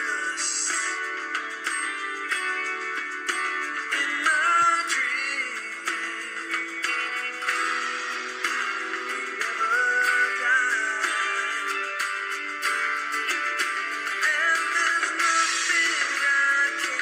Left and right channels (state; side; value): identical; both; correlation 1.00